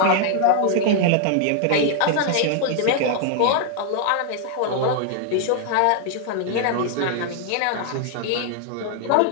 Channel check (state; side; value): different; both; correlation 0.00